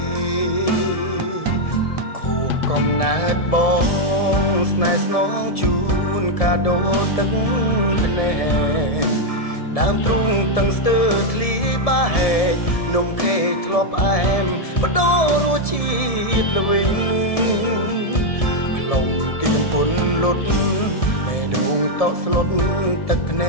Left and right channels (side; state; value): right; late; 1.7 ms